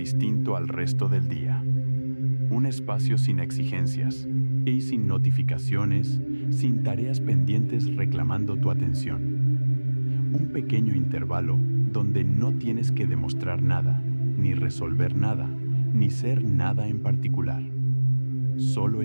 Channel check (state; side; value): inverted; both; correlation -1.00